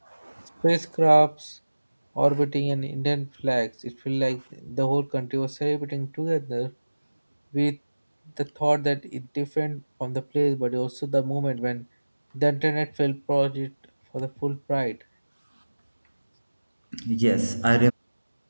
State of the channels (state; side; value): inverted; both; correlation -1.00